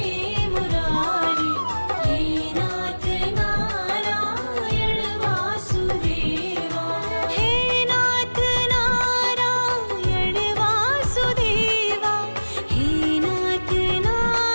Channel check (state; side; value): inverted; both; correlation -1.00